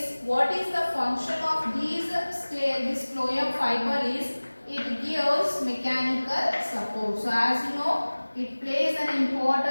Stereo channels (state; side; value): inverted; both; correlation -1.00